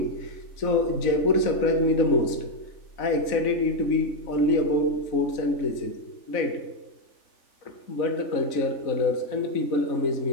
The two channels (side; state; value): right; late; 4.0 ms